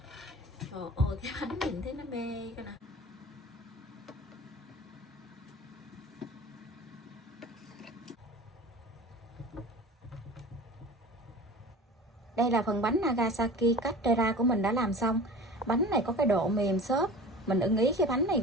Trời ơi, cái bánh nhìn thấy nó mê coi nè. Đây là phần bánh Nagasaki Castella của mình đã làm xong. Bánh này có cái độ mềm xốp, mình ưng ý cái bánh này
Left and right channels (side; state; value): both; normal; correlation 0.38